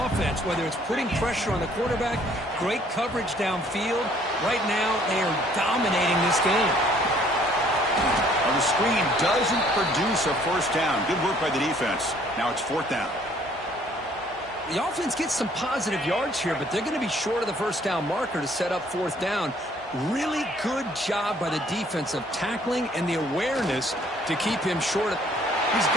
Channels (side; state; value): both; normal; correlation 0.60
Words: whether it's putting pressure on the quarterback, great coverage downfield. Right now, they are dominating this game. On the screen doesn't produce a 1st down. Good work by the defense. Now it's 4th down. The offense gets some positive yards here, but they're going to be short of the 1st down marker to set up 4th down. Really good job by the defense of tackling and the awareness to keep him short. He's